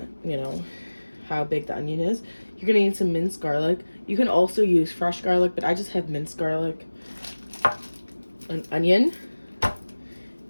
you know, how big the onion is. You're gonna need some minced garlic. You can also use fresh garlic, but I just have minced garlic, an onion,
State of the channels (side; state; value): both; inverted; correlation -1.00